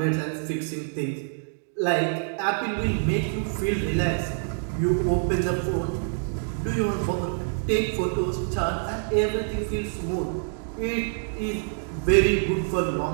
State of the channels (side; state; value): left; silent; digital silence